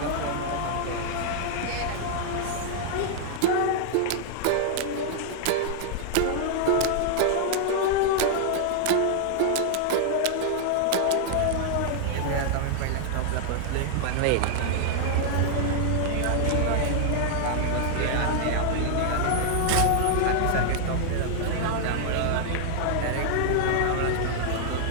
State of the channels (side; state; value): both; different; correlation 0.00